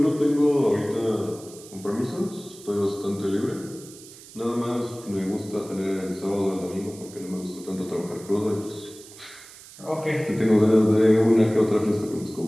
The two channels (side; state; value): right; noise; hiss, 19 dB below the sound